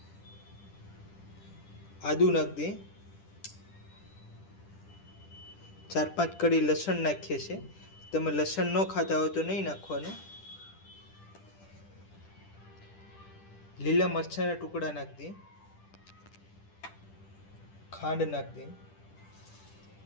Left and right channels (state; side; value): late; right; 10 ms